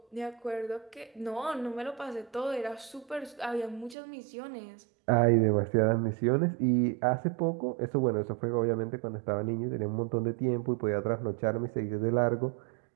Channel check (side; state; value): left; drops out; at 4.0 s